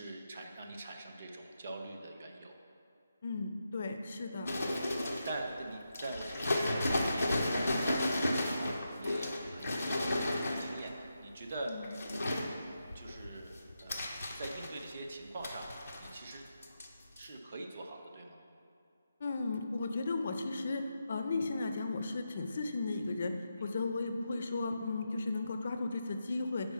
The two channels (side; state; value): both; inverted; correlation -0.86